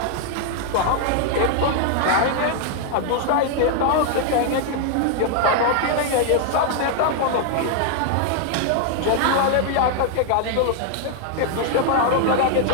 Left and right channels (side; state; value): both; different; correlation 0.00